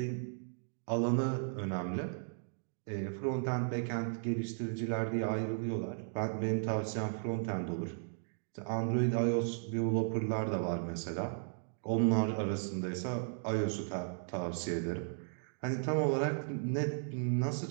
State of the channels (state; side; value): silent; left; digital silence